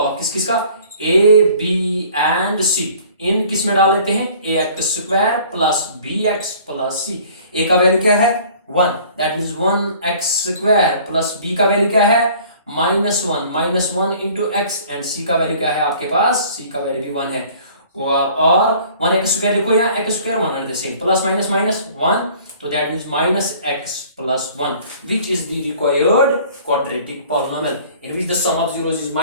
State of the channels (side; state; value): both; inverted; correlation -0.51